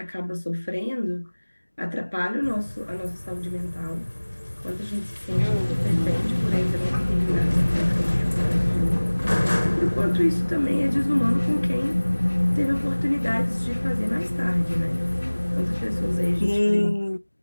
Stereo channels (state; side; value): inverted; both; correlation -1.00